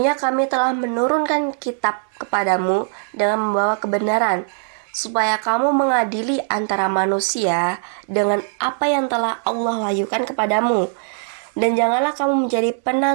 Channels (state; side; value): silent; left; 63 dB below the other